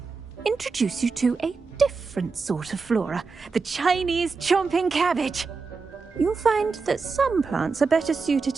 introduce you to a different sort of flora, the Chinese chomping cabbage. You'll find that some plants are better suited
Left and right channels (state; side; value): quieter; left; 4.6 dB